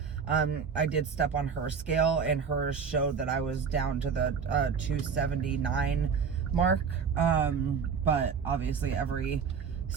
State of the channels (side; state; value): left; quieter; 6.2 dB